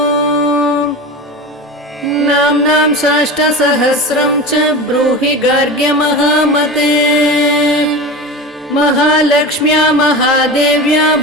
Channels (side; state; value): both; normal; correlation 0.28